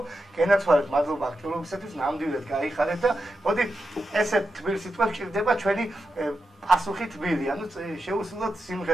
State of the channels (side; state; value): both; normal; correlation 0.88